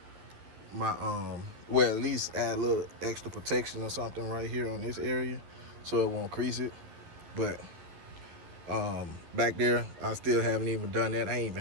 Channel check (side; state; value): left; late; 12 ms